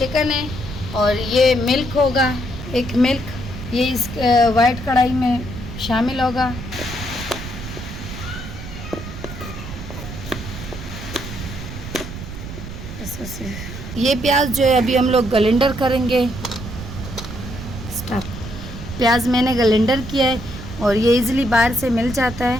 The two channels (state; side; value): noise; right; rumble, 10 dB below the sound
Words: है और ये मिल्क होगा, 1 मिल्क ये इस वाइट कढ़ाई में शामिल होगा। ये प्याज जो है अभी हम लोग ग्राइंडर करेंगे। स्टॉप। प्याज मैंने ग्राइंडर किया है और ये इजीली बाहर से मिल जाता